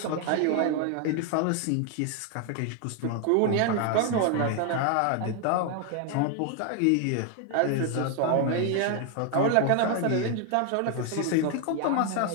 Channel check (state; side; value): different; both; correlation 0.00